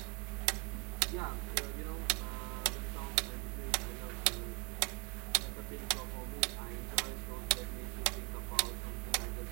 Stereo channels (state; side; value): quieter; left; 30.8 dB